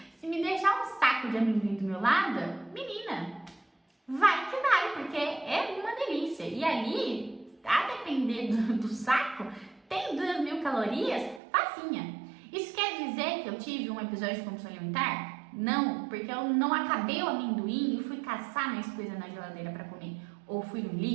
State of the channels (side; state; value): left; drops out; at 11.4 s